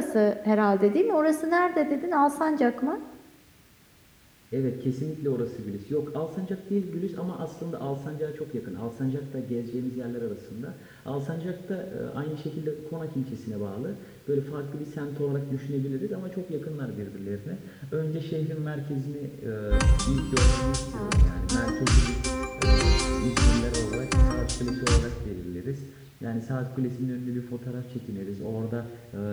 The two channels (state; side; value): identical; both; correlation 1.00